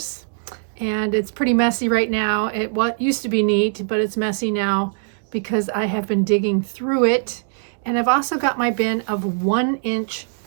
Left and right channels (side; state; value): left; silent; digital silence